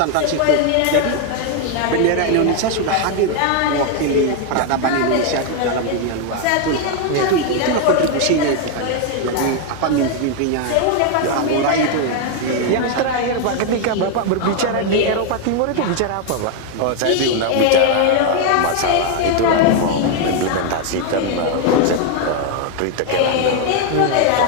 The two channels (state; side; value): different; both; correlation 0.01